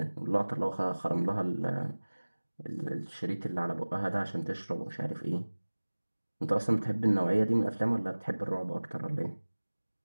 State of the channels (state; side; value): inverted; both; correlation -1.00